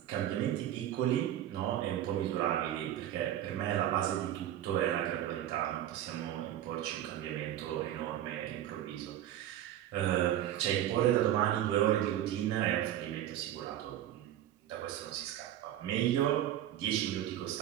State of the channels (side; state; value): left; quieter; 12.0 dB